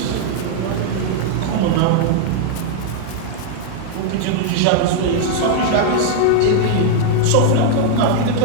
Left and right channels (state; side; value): different; both; correlation -0.01